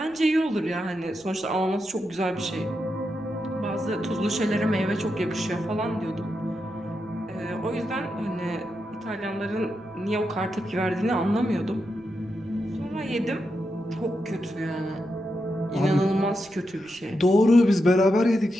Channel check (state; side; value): noise; right; rumble, 29 dB below the sound